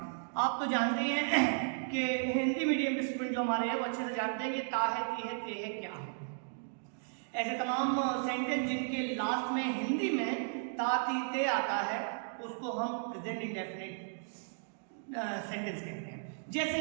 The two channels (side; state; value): left; silent; digital silence